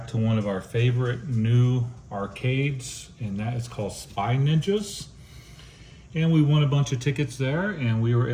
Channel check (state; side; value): identical; both; correlation 1.00